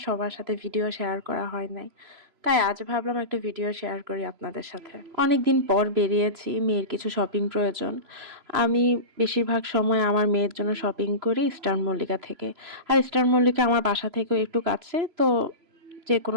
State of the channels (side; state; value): left; late; 3.0 ms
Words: সাথে ভিডিও শেয়ার করা হয় নাই। তাই আজ ভাবলাম একটা ভিডিও শেয়ার করি আপনাদের সাথে। অনেকদিন পর বেরিয়েছি, মেয়ের কিছু শপিং প্রয়োজন। আমি বেশিরভাগ সময় আমার মেয়ের জন্য শপিং করি ইস্টার্ন মল্লিকা থেকে। আর ইস্টার্ন মল্লিকা আমার বাসা থেকেও একটু কাছে, তো